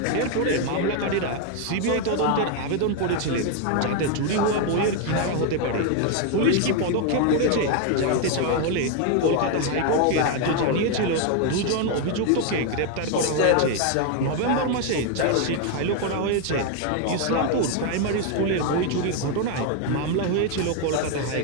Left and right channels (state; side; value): different; both; correlation 0.01